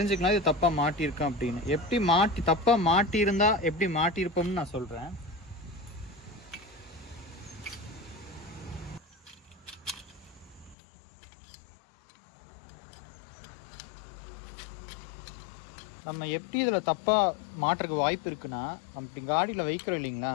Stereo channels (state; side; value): drops out; right; at 10.8 s